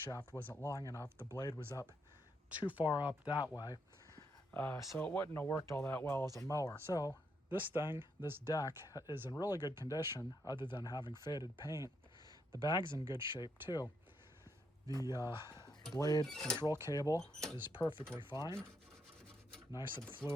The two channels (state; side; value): normal; both; correlation 0.78